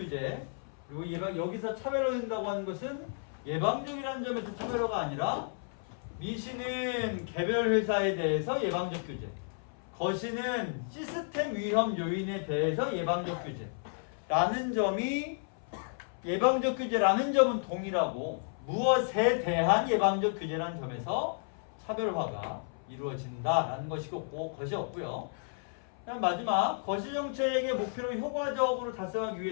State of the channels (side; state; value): right; silent; 56 dB below the other